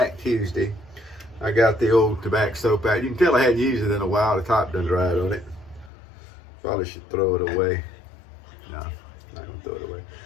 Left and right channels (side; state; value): right; drops out; at 5.9 s